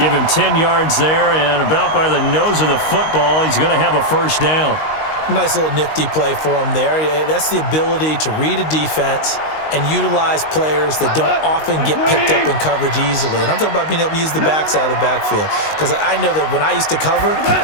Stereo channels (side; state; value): right; late; 19 ms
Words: him 10 yards there, and about by the nose of the football, he's going to have a first down. Nice little nifty play for him there. Yeah, that's the ability to read a defense and utilize players that don't often get picked up in coverage easily. And I'm talking about being able to use the backs out of the backfield. Because I know that when I used to cover,